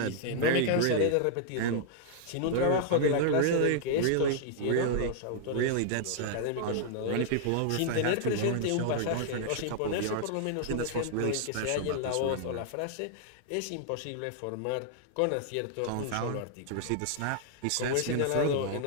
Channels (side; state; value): both; different; correlation -0.01